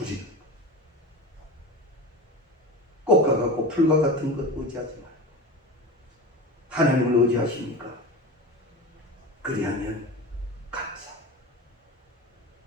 거예요. 꽃과 같고 풀과 같은 것 의지하지 말고 하나님을 의지하십니까? 그리하면 감사.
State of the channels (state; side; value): normal; both; correlation 0.29